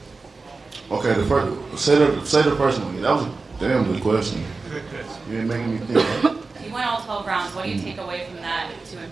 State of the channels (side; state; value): left; quieter; 3.9 dB